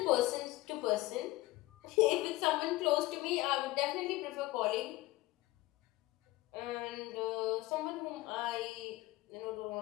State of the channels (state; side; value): quieter; right; 18.6 dB